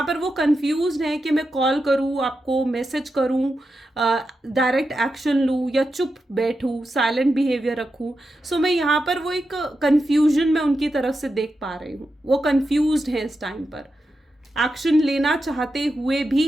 पर वो कंफ्यूज्ड हैं कि मैं कॉल करूँ आपको, मैसेज करूँ, डायरेक्ट एक्शन लूँ या चुप बैठूँ, साइलेंट बिहेवियर रखूँ। सो मैं यहाँ पर वो एक कन्फ्यूजन मैं उनकी तरफ से देख पा रही हूँ। वो कंफ्यूज्ड हैं इस टाइम पर, एक्शन लेना चाहते हुए भी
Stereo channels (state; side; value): normal; both; correlation 0.88